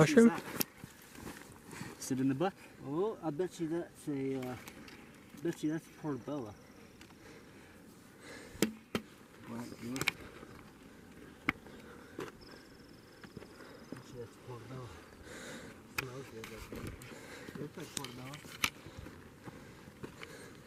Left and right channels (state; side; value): identical; both; correlation 1.00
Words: Sit in the buck. Oh, I bet you that's a, bet you that's portobello. Right, bet you that's portobello. Smells good, doesn't it? Looks like portobello.